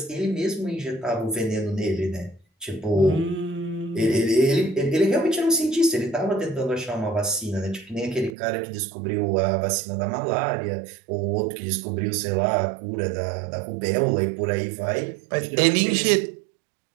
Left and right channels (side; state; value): left; drops out; at 8.3 s